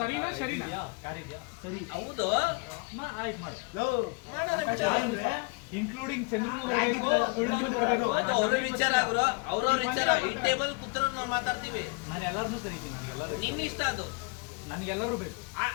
ಸರಿನಾ ಕಾರ್ ಇದೆಯಾ? ಸರಿ ಹೌದು ಆಯ್ತು ಮಾಡು. ಮಾಡೋಣ ಬಿಡು. ಇನ್ಕ್ಲೂಡಿಂಗ್ ಚಂದ್ರನು ಬರಬೇಕು, ಕುಳ್ಳನು ಬರಬೇಕು. ಅದು ಅವ್ರ ವಿಚಾರ ಗುರು, ಅವ್ರವ್ರ ವಿಚಾರ. ಈ ಟೇಬಲ್ ಕೂತ್ರು ನಾವು ಮಾತಾಡ್ತೀವಿ. ನಾನು ಎಲ್ಲರನ್ನೂ ಕರೀತೀನಿ, ನನಗೆಲ್ಲರೂ ನಿನ್ನ ಇಷ್ಟ ಅದು. ನನಗೆಲ್ಲರೂ ಬೇಕು.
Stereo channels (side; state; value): right; quieter; 31.8 dB